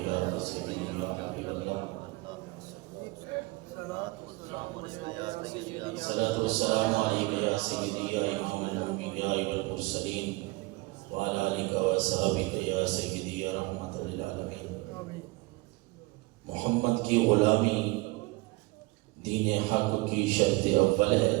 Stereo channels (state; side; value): quieter; left; 23.4 dB